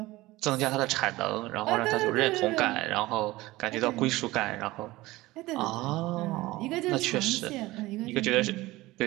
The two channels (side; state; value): left; quieter; 19.0 dB